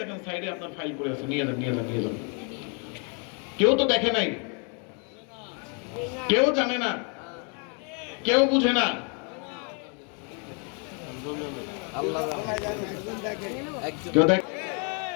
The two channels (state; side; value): quieter; right; 37.9 dB